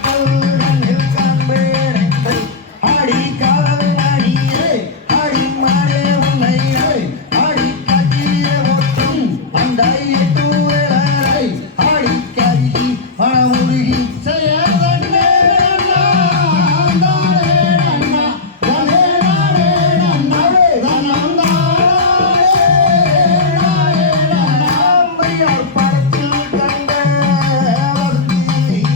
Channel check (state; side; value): quieter; right; 3.8 dB